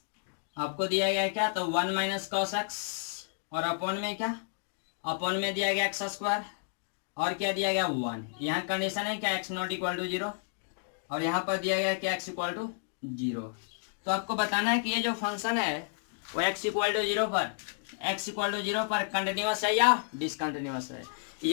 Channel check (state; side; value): silent; right; digital silence